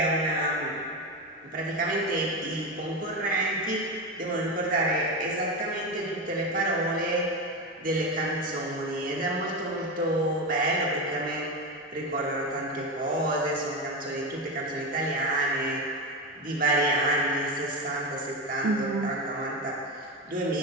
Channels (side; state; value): both; normal; correlation 0.17